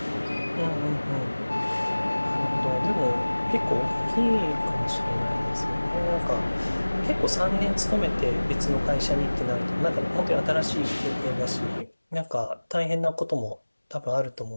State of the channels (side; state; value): both; inverted; correlation -1.00